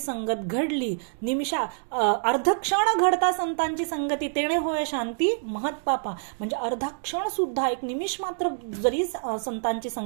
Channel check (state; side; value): silent; left; digital silence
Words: घडली, निमिषा अर्ध क्षण घडता संतांची संगती, तेणे होय शांती महत्पापा. म्हणजे अर्धा क्षण सुद्धा, एक निमिष मात्र जरी संतांची